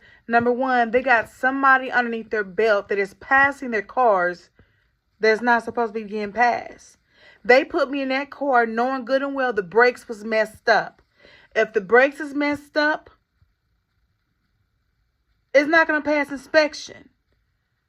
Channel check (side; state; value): both; identical; correlation 1.00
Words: number one, they got somebody underneath their belt that is passing their cars that's not supposed to be getting passed. They put me in that car knowing good and well the brakes was messed up. If the brakes is messed up, it's not going to pass inspection.